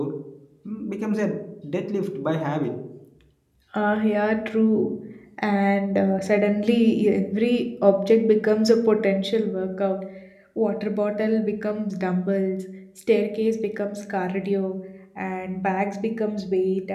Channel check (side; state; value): both; identical; correlation 1.00